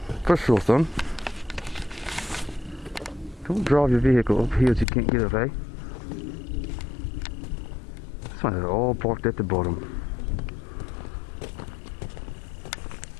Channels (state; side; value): drops out; right; at 4.9 s